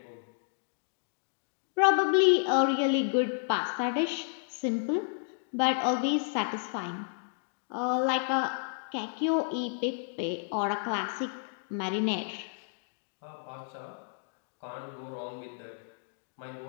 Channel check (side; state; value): right; silent; digital silence